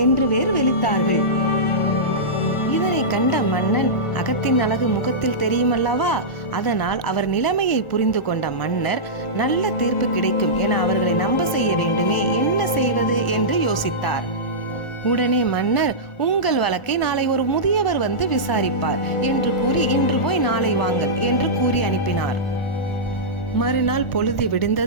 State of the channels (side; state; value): right; late; 1.4 ms